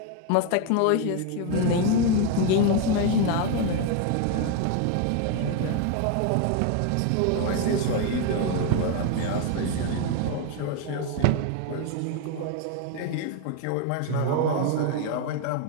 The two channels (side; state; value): both; different; correlation 0.01